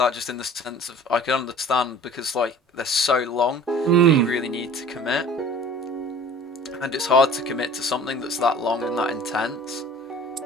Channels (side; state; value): both; normal; correlation 0.45